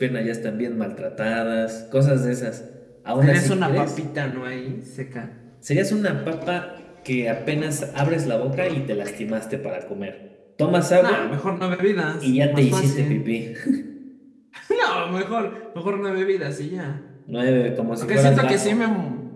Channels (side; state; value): both; identical; correlation 1.00